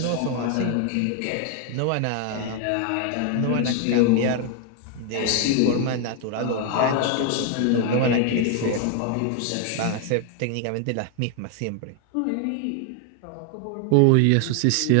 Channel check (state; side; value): different; both; correlation 0.01